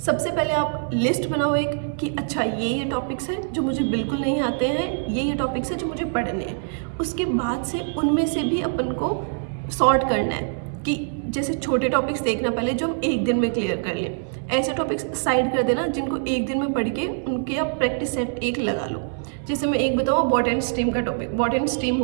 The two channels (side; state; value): left; silent; 63 dB below the other